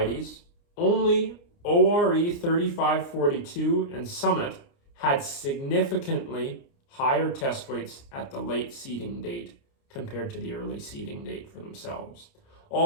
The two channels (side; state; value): right; late; 29 ms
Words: only ORE 3542 and Summit had significantly higher test weights at the late seeding date compared to the early seeding date for themselves.